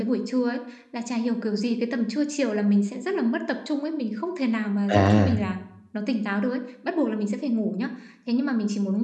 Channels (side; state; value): both; identical; correlation 1.00